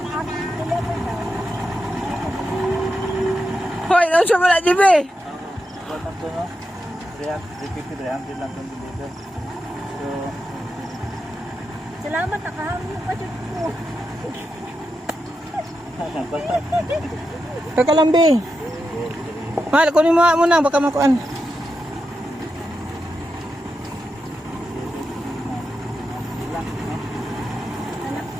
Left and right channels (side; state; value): both; normal; correlation 0.88